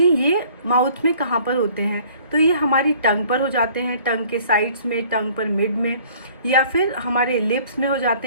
ये माउथ में कहाँ पर होते हैं। तो ये हमारी टंग पर हो जाते हैं, टंग के साइड्स में, टंग पर मिड में, या फिर हमारे लिप्स में हो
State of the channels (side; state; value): both; inverted; correlation -0.54